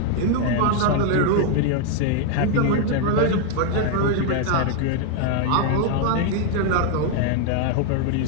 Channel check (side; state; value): both; different; correlation 0.00